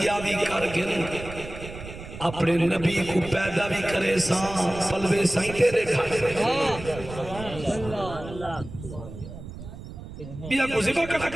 آوی کر گن اپنے نبی کو پیدا بھی کرے ساں پلوے سائیں تیرے کھانے بیا کو زبا کٹا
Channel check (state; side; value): noise; right; rumble, 12 dB below the sound